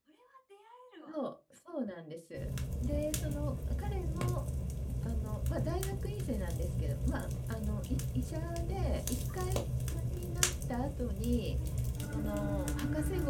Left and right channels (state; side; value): identical; both; correlation 1.00